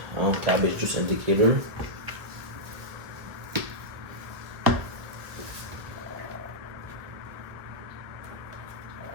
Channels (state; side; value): late; left; 1.6 ms